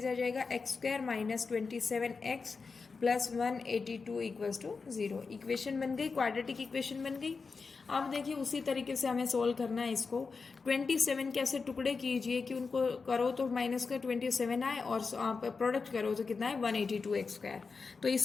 आ जाएगा x square minus 27x plus 182 equals to 0। Equation बन गई, क्वाड्रेटिक इक्वेशन बन गई। अब देखिए उसी तरीके से हमें सोल्व करना है इसको। 27 के ऐसे टुकड़े कीजिए कि उनको करो तो माइनस का 27 आए और आप प्रोडक्ट करो तो कितना है 182 एक्स स्क्वायर। तो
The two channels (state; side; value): quieter; right; 4.7 dB